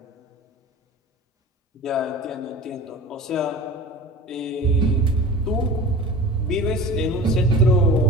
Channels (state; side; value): normal; both; correlation 0.37